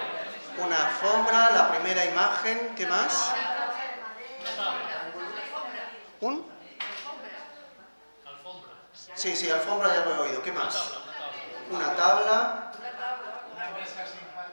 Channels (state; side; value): inverted; both; correlation -1.00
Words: Una alfombra, la primera imagen. ¿Qué más? ¿Un? Sí, alfombra ya lo he oído. ¿Qué más? Una tabla.